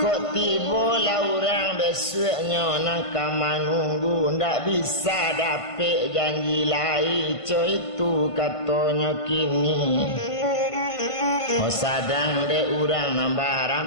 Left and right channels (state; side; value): late; right; 1.5 ms